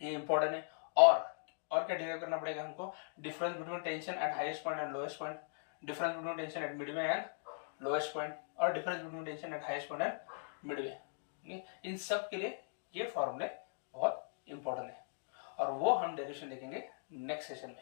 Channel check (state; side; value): silent; right; digital silence